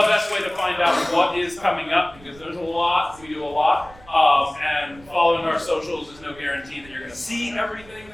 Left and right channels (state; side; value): noise; right; rumble, 23 dB below the sound